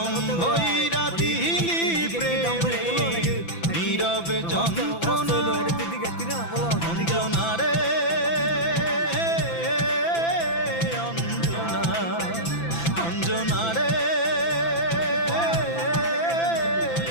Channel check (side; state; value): right; late; 5.9 ms